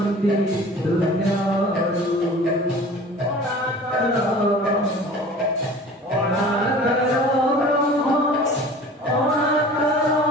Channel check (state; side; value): normal; both; correlation 0.43